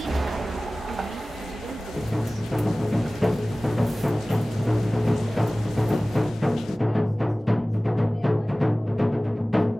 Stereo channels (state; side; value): normal; both; correlation 0.98